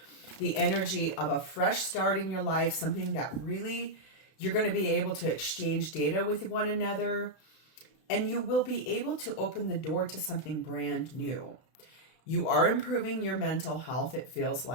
the energy of a fresh start in your life, something that really you're going to be able to exchange data with one another, and you will be able to open the door to something brand new. You are improving your mental health, it feels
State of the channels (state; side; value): late; right; 32 ms